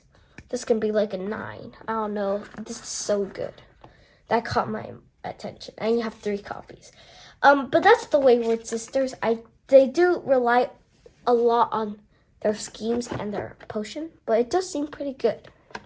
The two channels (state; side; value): identical; both; correlation 1.00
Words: this can be like a 9. I don't know. This is so good. That caught my attention. And you have 3 copies. But that's the Wayward Sisters. They do rely a lot on their schemes and their potion, but it does seem pretty good.